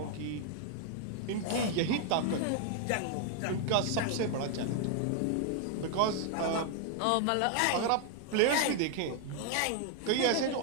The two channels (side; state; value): both; different; correlation 0.00